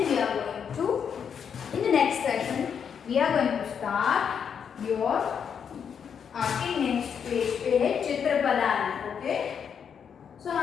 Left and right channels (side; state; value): right; quieter; 7.4 dB